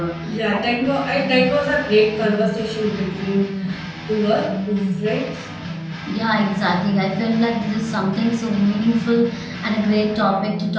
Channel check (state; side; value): identical; both; correlation 1.00